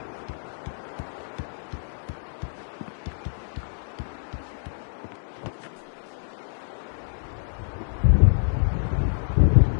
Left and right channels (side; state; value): right; silent; digital silence